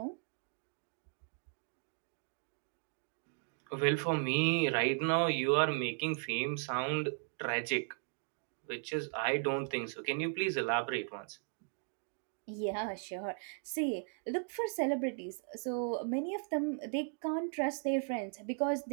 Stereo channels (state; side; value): silent; left; 53 dB below the other